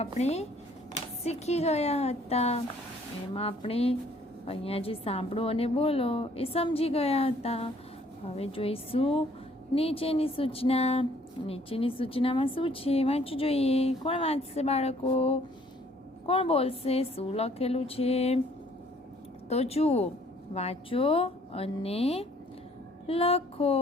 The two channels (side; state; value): both; normal; correlation 0.60